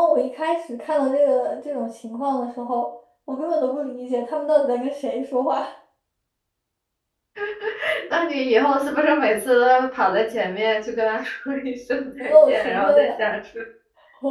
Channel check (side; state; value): both; identical; correlation 1.00